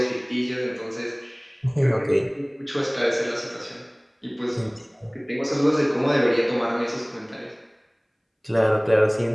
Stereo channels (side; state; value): both; identical; correlation 1.00